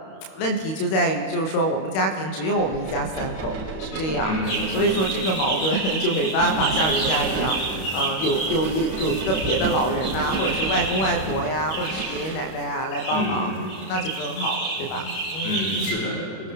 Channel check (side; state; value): right; late; 31 ms